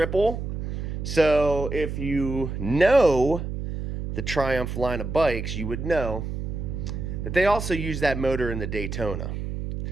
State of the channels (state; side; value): noise; right; hum, 5 dB below the sound